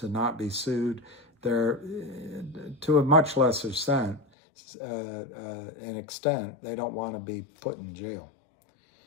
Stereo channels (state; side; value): drops out; right; at 4.2 s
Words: not be sued. They're, to a much lesser extent, they don't want to be put in jail.